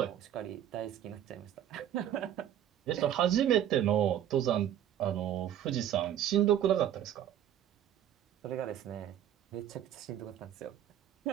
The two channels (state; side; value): quieter; left; 10.8 dB